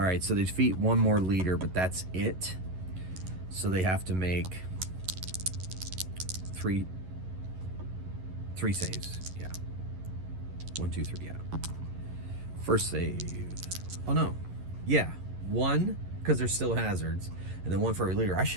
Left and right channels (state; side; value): late; left; 11 ms